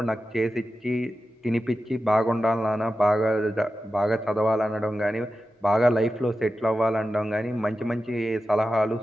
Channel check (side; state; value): both; normal; correlation 0.92